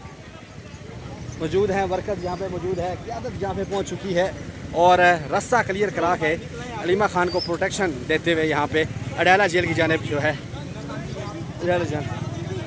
मौजूद हैं। वर्कर्स यहाँ पे मौजूद है, क़यादत यहाँ पे पहुँच चुकी है और रास्ता क्लियर करा के अलीमा खान को प्रोटेक्शन देते हुए यहाँ पे अडियाला जेल की जानिब जो है अडियाला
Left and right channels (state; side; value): identical; both; correlation 1.00